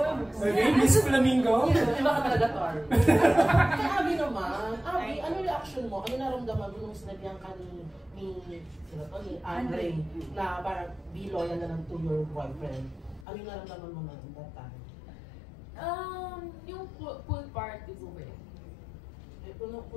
Miss Flamingo? Iba ka talaga, Tor. Kay Abby naman, Abby, ano reaction mo? Ano naramdaman mo nung sinabihan ka ni Andre na parang be loyal na lang to your boyfriend? Ano yung naramdaman mo na that time? Yung pool party po eh.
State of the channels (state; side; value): drops out; right; at 13.2 s